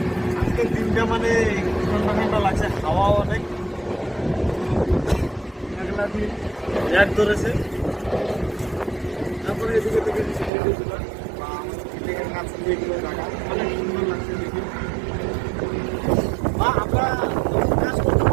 আজকে দিনটা মানে ঠান্ডা ঠান্ডা লাগছে, হাওয়া অনেক, লাইট ধরেছে। তারপরে এদিকে থেকে কাজ এগুলো রাখা অনেক সুন্দর লাগছে দেখি। বা আমরা কাজ করতে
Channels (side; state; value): left; drops out; at 10.5 s